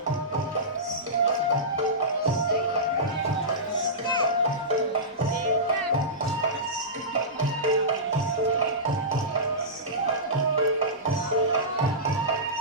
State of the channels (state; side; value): normal; both; correlation -0.18